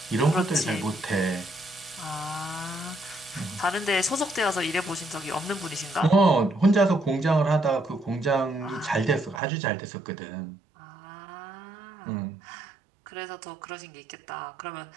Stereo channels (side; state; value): left; drops out; at 9.4 s